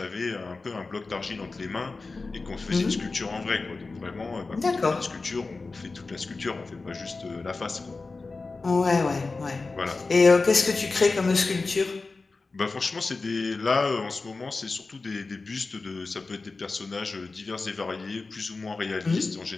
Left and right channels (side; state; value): right; quieter; 3.8 dB